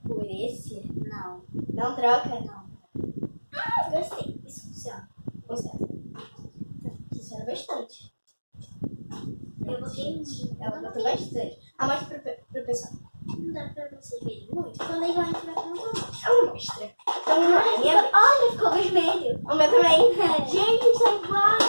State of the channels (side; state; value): both; inverted; correlation -1.00